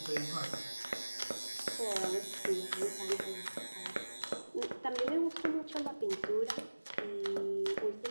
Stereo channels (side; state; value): both; inverted; correlation -1.00